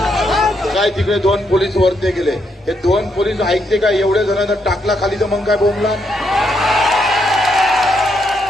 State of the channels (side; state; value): both; normal; correlation 0.77